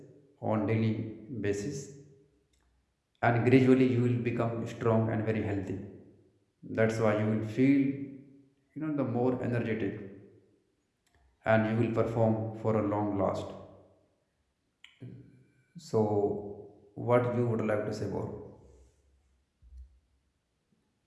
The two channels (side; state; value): both; identical; correlation 1.00